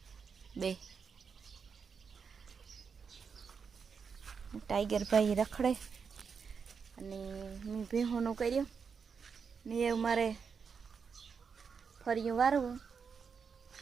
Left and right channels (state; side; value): quieter; left; 6.0 dB